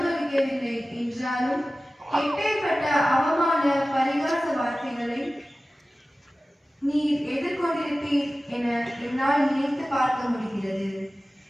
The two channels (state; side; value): normal; both; correlation 0.96